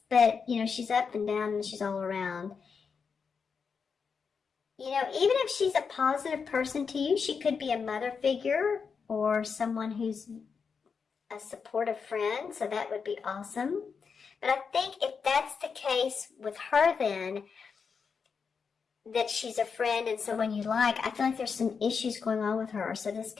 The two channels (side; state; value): right; quieter; 5.8 dB